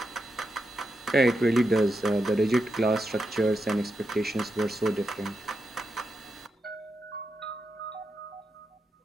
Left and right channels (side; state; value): both; normal; correlation 0.86